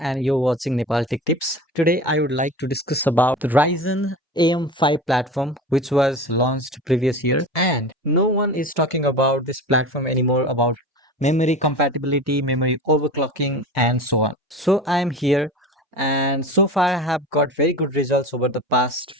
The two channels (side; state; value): both; normal; correlation 0.33